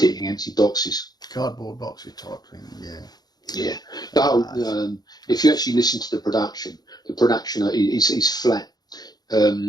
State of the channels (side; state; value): right; late; 0.19 ms